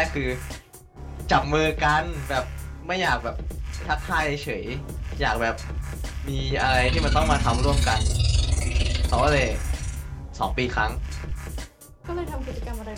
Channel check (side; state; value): both; identical; correlation 1.00